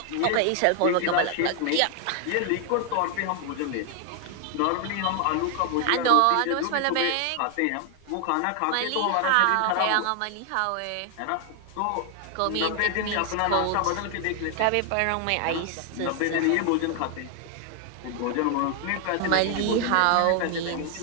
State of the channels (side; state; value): both; different; correlation 0.00